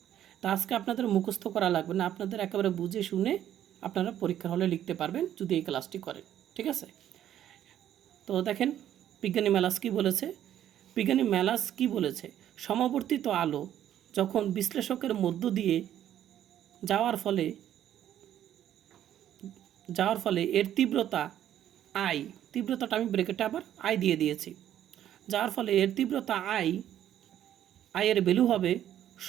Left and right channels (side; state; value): left; quieter; 11.2 dB